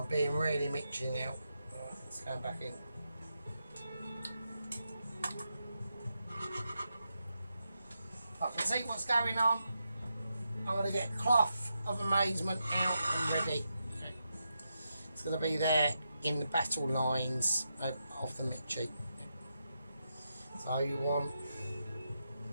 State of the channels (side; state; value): both; inverted; correlation -0.85